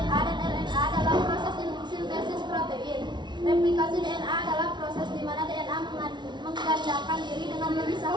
dan RNA dalam proses sintesis protein. Replikasi DNA adalah proses di mana DNA menggandakan diri dengan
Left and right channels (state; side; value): late; left; 0.22 ms